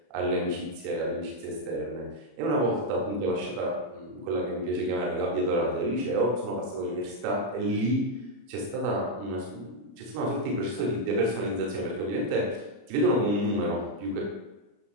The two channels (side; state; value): left; late; 33 ms